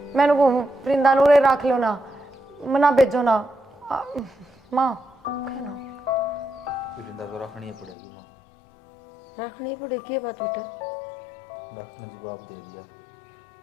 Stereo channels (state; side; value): drops out; right; at 8.0 s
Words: मैंने वो वृंदा नूरे रख लो ना, मना भेजो ना। माँ है ना वृंदा तो रखनी पड़ेगी माँ। रखनी पड़ेगी क्या बात बेटा? डॉक्टर ने जवाब दे दिया